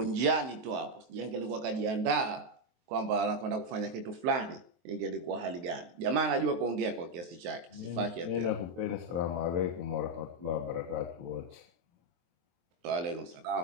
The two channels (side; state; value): left; late; 23 ms